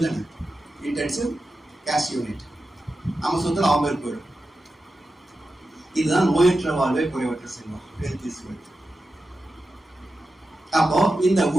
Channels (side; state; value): both; normal; correlation 0.92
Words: தானே, intensive cash unit. நம்ம சொத்துல அவங்க போயிடும். இதுதான் நோயற்ற வாழ்வை குறைவற்ற செல்வம், health is wealth. அப்போ இந்த